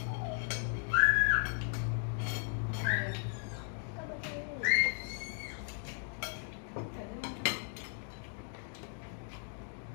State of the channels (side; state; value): right; silent; 53 dB below the other